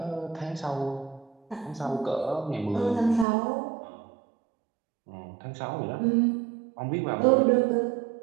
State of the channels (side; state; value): left; drops out; at 3.2 s